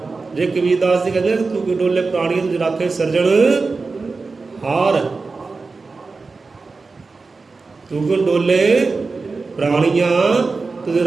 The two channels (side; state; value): left; quieter; 4.1 dB